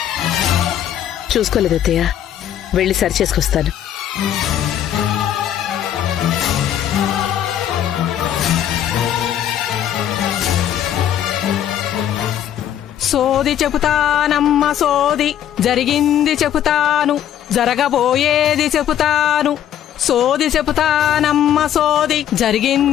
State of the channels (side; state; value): right; quieter; 10.6 dB